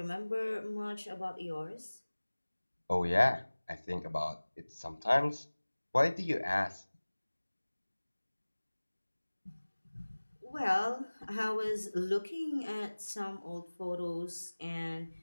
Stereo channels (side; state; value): both; inverted; correlation -1.00